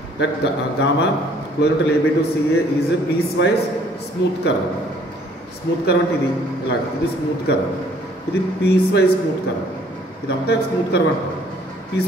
That gamma closure to AB to CA is piece wise smooth curve. Smooth curve అంటే ఇది ఇలా, ఇది స్మూత్ కర్వ్, ఇది పీస్ వైజ్ స్మూత్ కర్వ్. ఇదంతా స్మూత్ కర్వ్ అంటారు. పీస్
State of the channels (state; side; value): normal; both; correlation 0.60